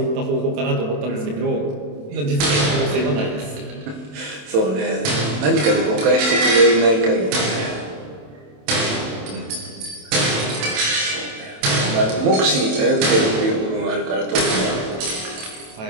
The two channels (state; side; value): late; left; 27 ms